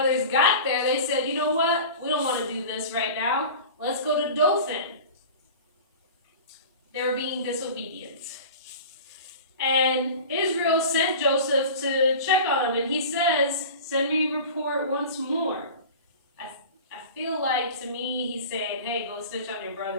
got there, they said, You know what? We don't want to do this right now. Let's go to Dothan. They were being disobedient. And Israel sent Joseph to check on him, and he says, Send me a report once more. I feel like, to me, he's saying, Hey, go snitch on your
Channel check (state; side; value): inverted; both; correlation -0.36